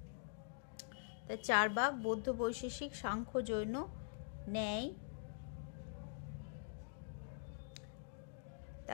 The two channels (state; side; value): silent; right; digital silence